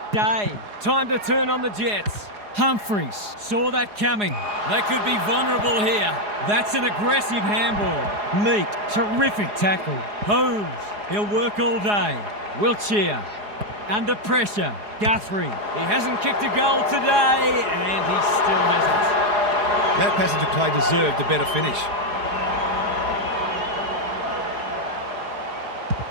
Day, time to turn on the Jets. Humphreys saw that coming. They could be vulnerable here. That's an aggressive handball. Meek, terrific tackle. Holmes, he'll work all day. Wiltshire, under pressure. Guthrie, he hasn't kicked a goal today, and he still hasn't. That passage of play deserved a better finish.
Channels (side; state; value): left; late; 4.8 ms